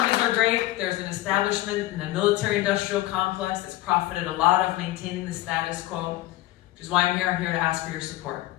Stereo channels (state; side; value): quieter; right; 16.7 dB